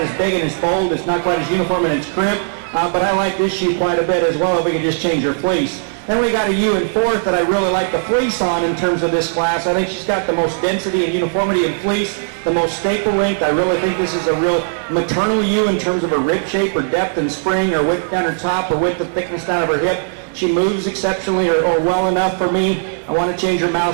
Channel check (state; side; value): silent; left; digital silence